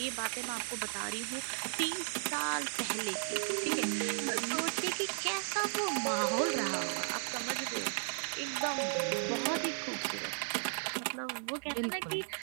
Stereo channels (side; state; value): left; silent; 54 dB below the other